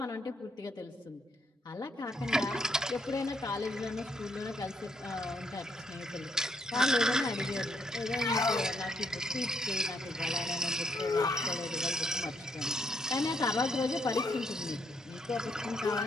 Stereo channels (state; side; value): normal; both; correlation 0.74